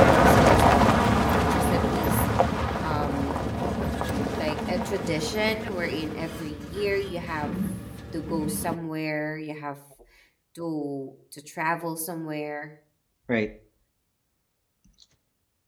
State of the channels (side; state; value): both; identical; correlation 1.00